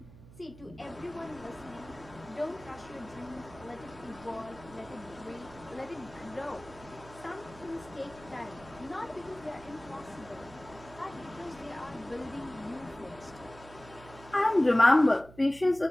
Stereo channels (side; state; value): right; noise; hum, 19 dB below the sound